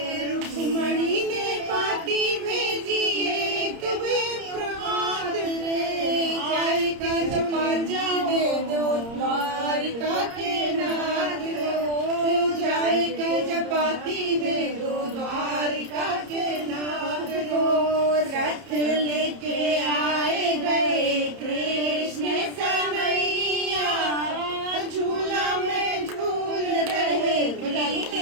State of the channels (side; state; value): left; late; 30 ms